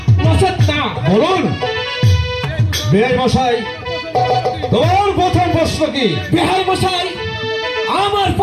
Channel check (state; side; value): identical; both; correlation 1.00